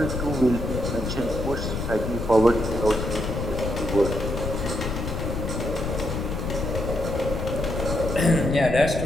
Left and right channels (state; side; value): noise; left; rumble, 4 dB below the sound